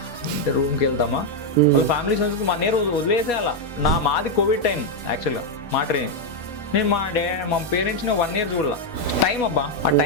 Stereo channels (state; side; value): normal; both; correlation 0.02